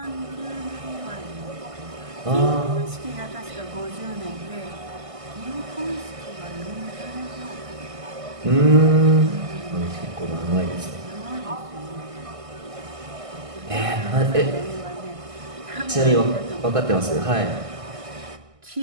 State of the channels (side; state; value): left; late; 1.6 ms